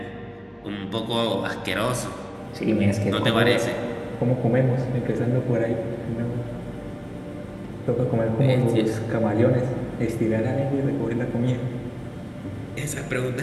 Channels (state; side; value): identical; both; correlation 1.00